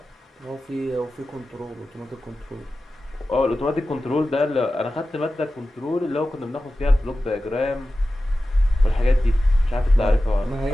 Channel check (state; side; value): normal; both; correlation 0.94